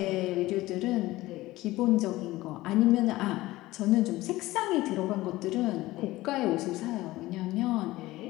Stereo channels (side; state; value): right; quieter; 17.9 dB